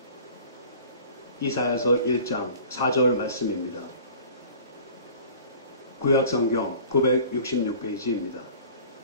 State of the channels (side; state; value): both; inverted; correlation -0.45